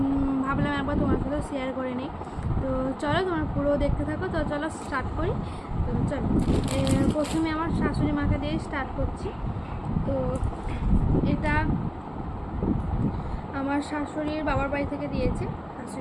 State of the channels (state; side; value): identical; both; correlation 1.00